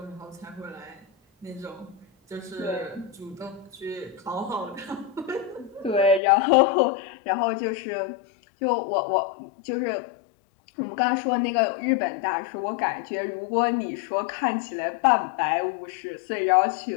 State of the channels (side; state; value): right; drops out; at 6.2 s